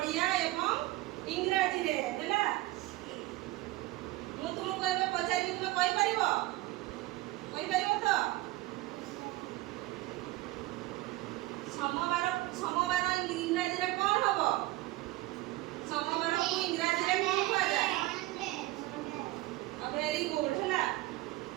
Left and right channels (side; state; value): left; quieter; 18.5 dB